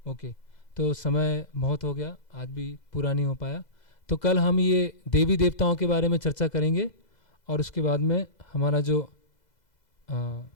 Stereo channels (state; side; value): late; right; 2.0 ms